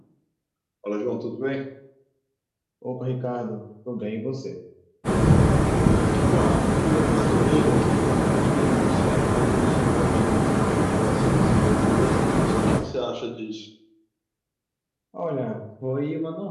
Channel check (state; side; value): identical; both; correlation 1.00